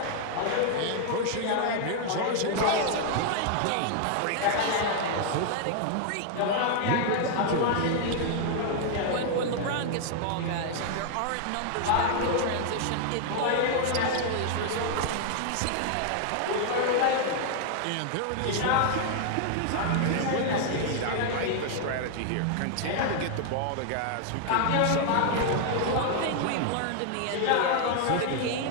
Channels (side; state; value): both; different; correlation 0.00